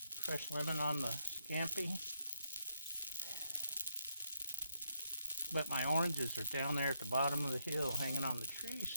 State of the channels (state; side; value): inverted; both; correlation -0.77